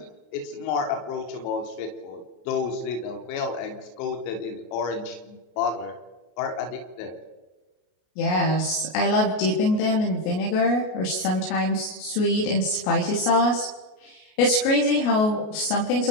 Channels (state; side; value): late; right; 33 ms